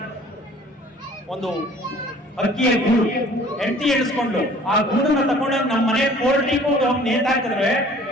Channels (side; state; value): both; normal; correlation 0.52